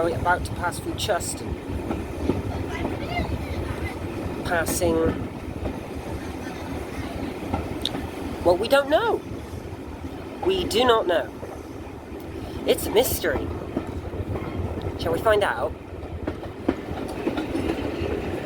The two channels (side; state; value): both; identical; correlation 1.00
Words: about to pass through Chuston. Passing... well, we don't know. We do not know. It's a mystery. Shall we find out?